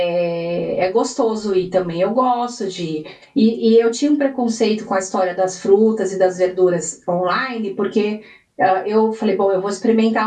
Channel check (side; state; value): both; identical; correlation 1.00